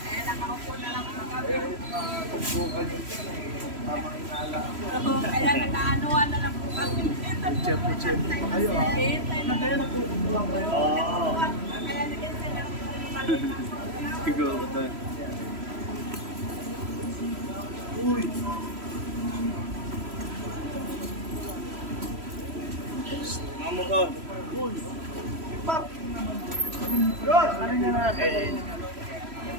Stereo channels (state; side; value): late; left; 3.0 ms